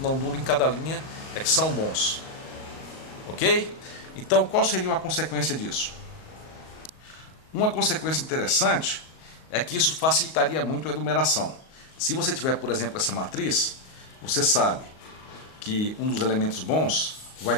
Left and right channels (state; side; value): late; right; 38 ms